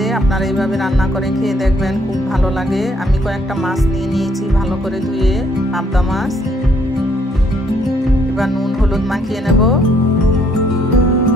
আপনারা এইভাবে রান্না করে খেয়ে দেখবেন, খুব ভালো লাগে। আমি কয়েকটা মাছ নিয়ে নিয়েছি ভালো করে ধুয়ে, পাবদা মাছ। এবার নুন হলুদ মাখিয়ে নেব।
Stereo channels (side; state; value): both; normal; correlation 0.67